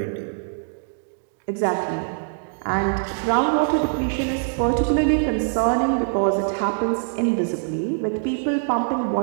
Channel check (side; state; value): left; silent; digital silence